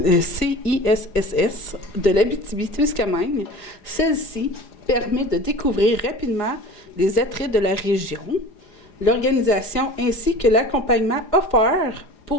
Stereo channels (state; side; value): late; right; 4.9 ms